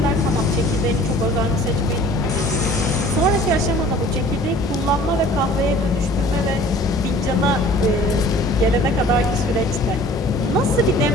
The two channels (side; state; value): both; normal; correlation 0.49